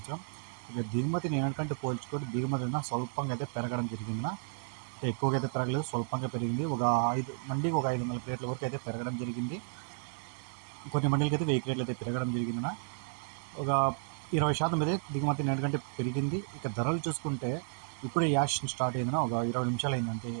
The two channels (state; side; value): silent; left; digital silence